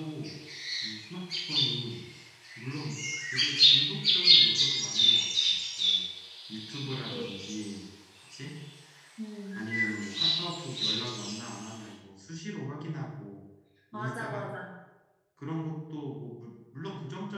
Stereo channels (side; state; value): both; identical; correlation 1.00